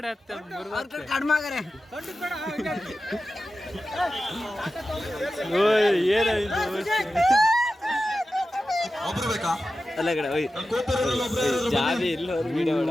ಕಡ್ಮಾಗರೆ. ಏನಾಯ್ತು ಒಬ್ರು ಬೇಕಾ? ಅಲ್ಲ ಕಡೆ ಜಾಬಿ ಇಲ್ಲ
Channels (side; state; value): both; normal; correlation 0.93